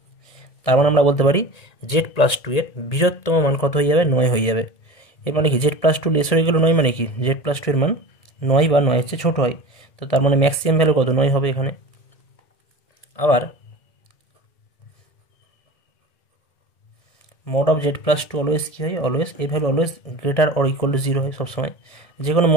তার মানে আমরা বলতে পারি জেড প্লাস টু এর বৃহত্তম মান কত হয়ে যাবে, নয় হয়ে যাবে। এর মানে কি, z plus two less or equal to নয় মানে কি, জেড প্লাস টু এর মান নয় বা নয়ের চেয়ে ছোটো হয়। তো তার মানে ম্যাক্সিমাম ভ্যালু কত, নয় হবে এখানে। আবার mod of z plus two always কী হয়, অলওয়েজ এই value always greater or equal to zero হয় সবসময়, যে কোনো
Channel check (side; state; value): right; late; 1.7 ms